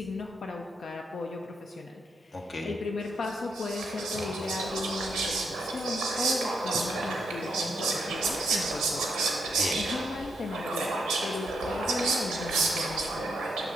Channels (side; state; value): both; normal; correlation 0.79